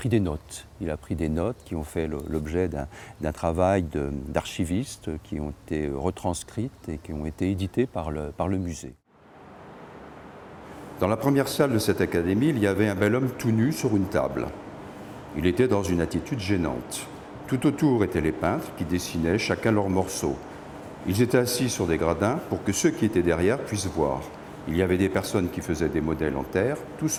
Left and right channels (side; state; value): both; identical; correlation 1.00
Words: des notes. Il a pris des notes qui ont fait l'objet d'un travail d'archivistes qui ont été retranscrites et qui ont été éditées par le musée. Dans la première salle de cette académie, il y avait un bel homme tout nu sur une table. Il était dans une attitude gênante. Tout autour étaient les peintres qui dessinaient chacun leur morceau. Ils étaient assis sur des gradins pour que ceux qui étaient derrière puissent voir. il y avait des personnes qui faisaient des modèles en terre, tout